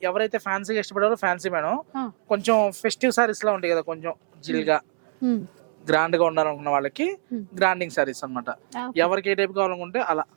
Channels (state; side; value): silent; left; 62 dB below the other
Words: ఎవరైతే ఫ్యాన్సీ ఇష్టపడారో ఫ్యాన్సీ మేడం, కొంచెం ఫెస్టివ్ సారీస్ లా ఉంటాయి కదా, కొంచెం జిల్గా గ్రాండ్ గా ఉండాలనుకున్న వాళ్ళకి గ్రాండింగ్ సారీస్ అనమాట. ఎవరికి ఏ టైప్ కావాలనుకుంటే అలా